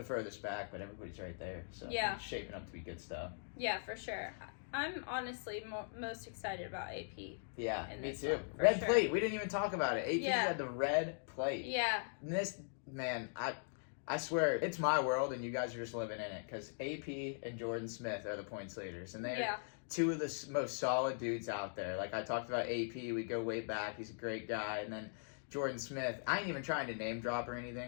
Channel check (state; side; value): silent; right; digital silence